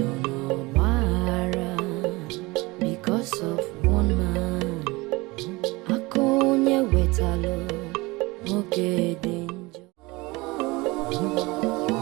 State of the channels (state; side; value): quieter; left; 23.1 dB